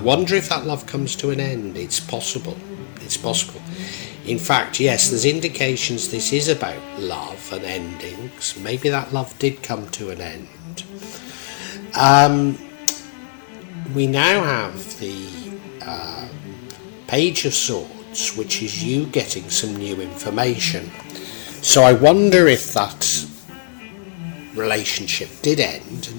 if that love comes to an end. It's possible. It's possible. In fact, yes, there's indications this is about love and endings. Maybe that love did come to an end. We now have the Page of Swords, which is you getting some new information. So I wonder if that relationship did end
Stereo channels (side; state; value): right; silent; digital silence